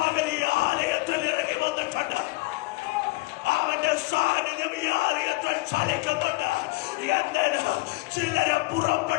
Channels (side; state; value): right; quieter; 22.7 dB